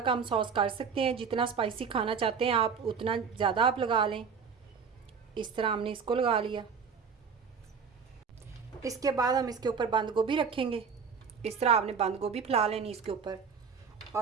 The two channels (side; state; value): left; quieter; 6.0 dB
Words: कम सॉस कर सकते हैं, जितना स्पाइसी खाना चाहते हैं आप उतना ज़्यादा आप लगा लें। इस तरह हमने इसको लगा लिया। इसके बाद हम इसके ऊपर बंद गोभी रखेंगे। इस तरह आपने बंद गोभी फैला लेनी इसके ऊपर